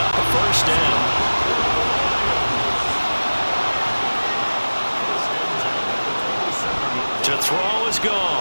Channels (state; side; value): inverted; both; correlation -1.00